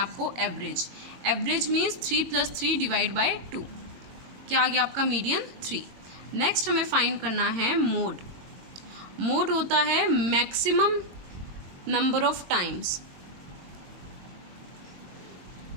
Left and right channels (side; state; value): left; late; 22 ms